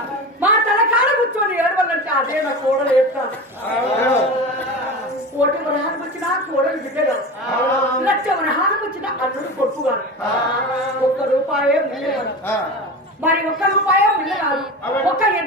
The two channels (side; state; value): both; normal; correlation 0.28